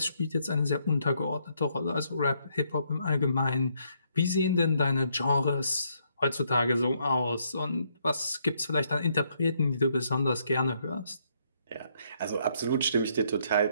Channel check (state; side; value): inverted; both; correlation -0.72